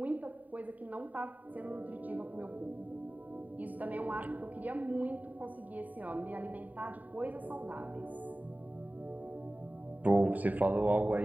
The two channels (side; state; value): left; late; 0.076 ms